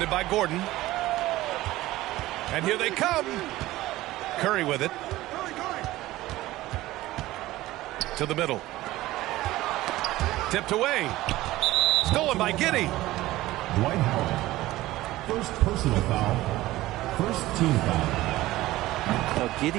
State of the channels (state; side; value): quieter; left; 16.9 dB